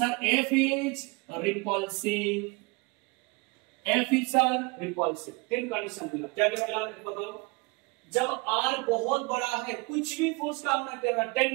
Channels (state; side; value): quieter; left; 27.3 dB